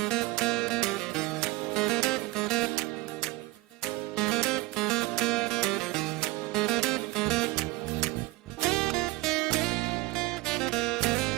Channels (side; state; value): left; quieter; 20.5 dB